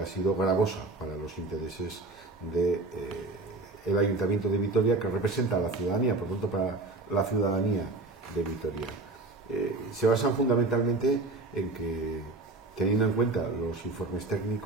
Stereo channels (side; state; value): left; quieter; 3.2 dB